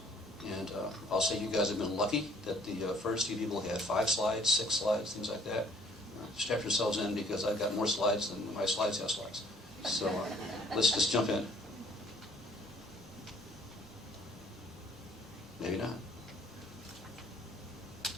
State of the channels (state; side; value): normal; both; correlation 0.59